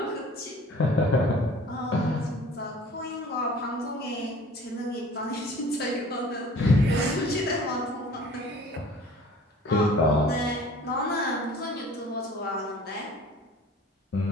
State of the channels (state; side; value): normal; both; correlation 0.48